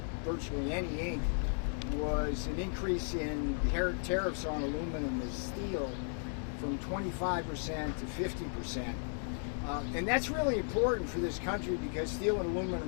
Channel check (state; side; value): silent; right; 54 dB below the other